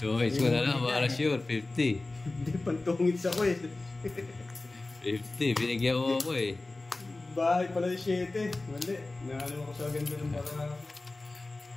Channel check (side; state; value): right; quieter; 3.1 dB